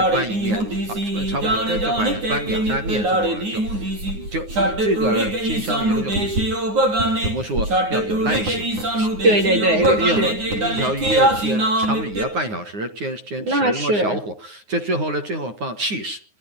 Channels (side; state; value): left; late; 9.6 ms